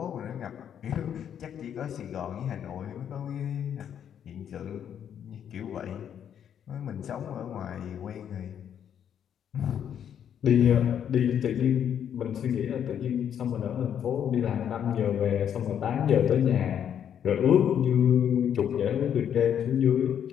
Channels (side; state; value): right; quieter; 9.0 dB